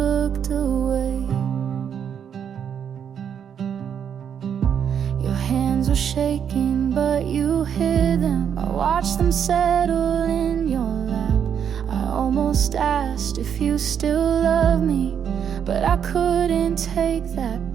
away. Your hands were shaking, but you hid them. I watched them settle in your lap. I almost asked if you still love me, but I couldn't take that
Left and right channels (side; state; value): left; quieter; 8.2 dB